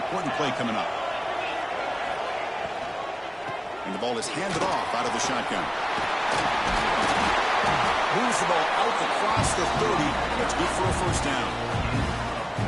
play coming up. And the ball is handed off out of the shotgun. Moves the ball out across the 30. That's good for a first down.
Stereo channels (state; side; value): identical; both; correlation 1.00